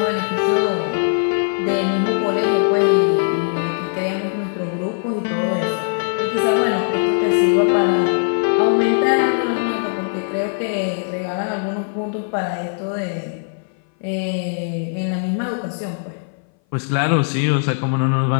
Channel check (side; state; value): right; silent; 59 dB below the other